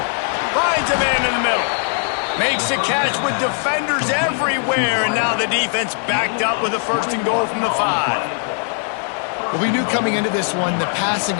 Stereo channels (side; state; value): right; silent; 55 dB below the other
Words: Finds a man in the middle. Makes a catch with defenders everywhere, and now the defense backed up with a 1st and goal from the 5. Well, we knew coming into this one, the passing